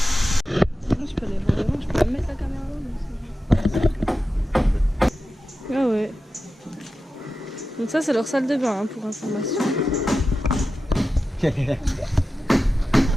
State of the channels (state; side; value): normal; both; correlation 0.92